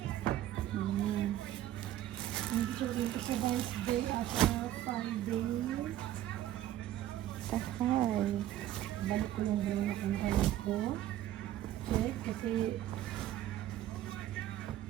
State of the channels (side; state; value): left; quieter; 12.9 dB